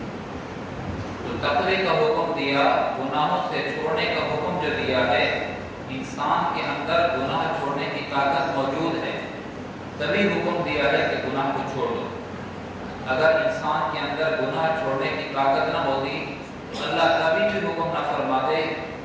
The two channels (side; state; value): both; identical; correlation 1.00